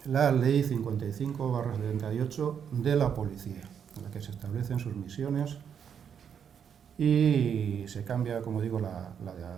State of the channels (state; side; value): quieter; left; 7.8 dB